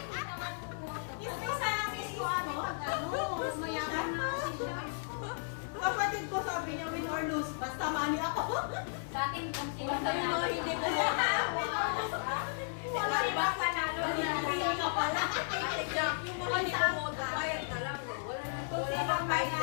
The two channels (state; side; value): silent; right; digital silence